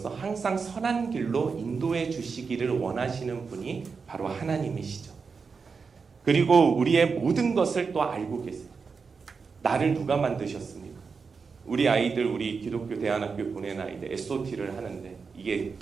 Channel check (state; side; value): quieter; left; 5.2 dB